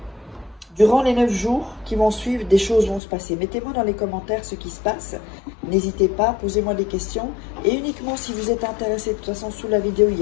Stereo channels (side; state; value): right; drops out; at 3.0 s